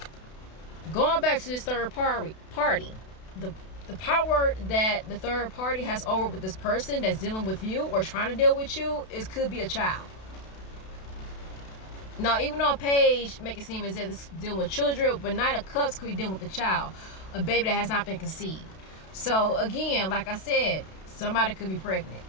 going back to this third party, the power that the third party has over with this person that's dealing with you or trying to deal with you, it could be a child. Now, even on page, make it seem as if it's dealing with children, but Knight of Cups could be dealing with a child, a baby that has not been conceived. So again, like I said, somebody could be pregnant.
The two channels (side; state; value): right; late; 32 ms